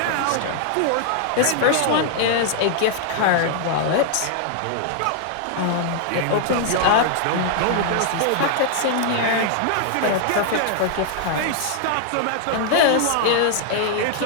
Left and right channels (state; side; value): different; both; correlation -0.01